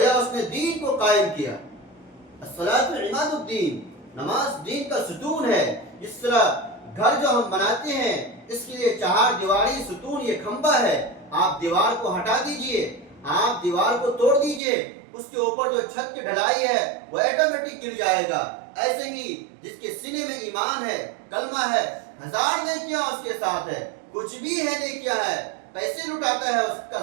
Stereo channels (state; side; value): drops out; left; at 14.6 s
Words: اس نے دین کو قائم کیا۔ الصلاۃ عماد الدین، نماز دین کا ستون ہے۔ جس طرح گھر جو ہم بناتے ہیں اس کے لیے 4 دیواری ستون، یہ کھمبا ہے، آپ دیوار کو ہٹا دیجئے، آپ دیوار کو توڑ دیجئے، اس کے اوپر جو چھت کی ڈھلائی ہے وہ آٹومیٹک گر جائے گا۔ ایسے ہی جس کے سینے میں ایمان ہے، کلمہ ہے، 1000 نیکیاں اس کے ساتھ ہے، کچھ بھی ہے نیکیاں ہے، پیسے لٹاتا ہے، اس کا